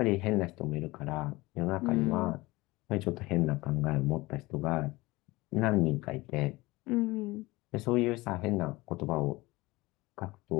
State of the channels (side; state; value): right; quieter; 21.2 dB